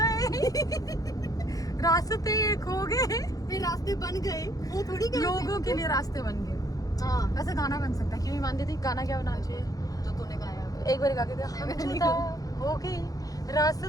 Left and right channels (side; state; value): right; late; 0.17 ms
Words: रास्ते खो गए, फिर रास्ते बन गए, वो थोड़ी गए थे। लोगों के लिए रास्ते बन गए। हाँ वैसे गाना बन सकता है, क्यों नहीं मानती थी? गाना क्या बनाना चाहिए? जो तूने गाया एक बार गा के दे, हम जुदा हो गए,